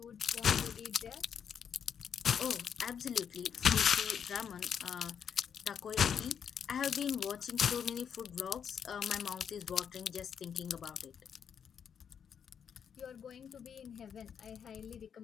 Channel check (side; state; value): right; quieter; 7.7 dB